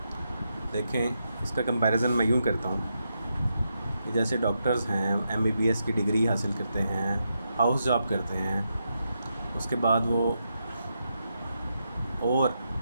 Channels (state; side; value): inverted; both; correlation -0.84